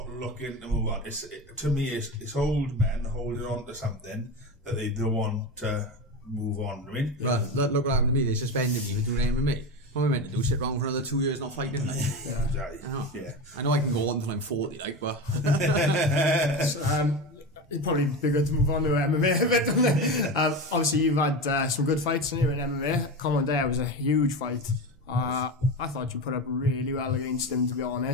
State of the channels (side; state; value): both; normal; correlation 0.23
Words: looking to move on. To me, it's old men holding on to something that they don't want to move on. I mean, look what happened to me. They suspended me for doing MMA. What am I meant to do? Sit around for another 2 years not fighting? Like? Exactly. I know I can go on until I'm 40, like, but it'd probably be good to move on to MMA a bit, don't it? Obviously, you've had some good fights in MMA. Commandeur was a huge fight. I thought you put up really well against him, to be